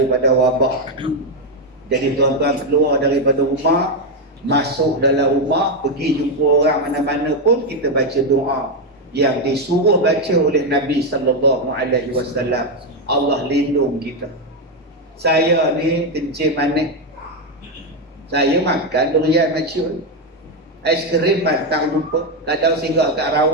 wabak. Jadi tuan-tuan keluar daripada rumah, masuk dalam rumah, pergi jumpa orang mana-mana pun, kita baca doa yang disuruh baca oleh Nabi SAW. Allah lindung kita. Saya ni kencing manis, saya makan durian maciun. Ais krim batang lupa. Kadang singgah kat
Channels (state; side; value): normal; both; correlation 0.05